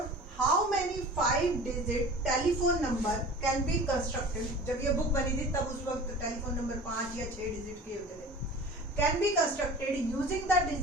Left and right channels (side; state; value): both; normal; correlation 0.40